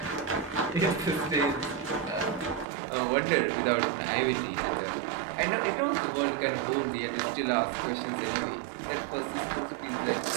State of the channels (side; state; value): left; drops out; at 2.7 s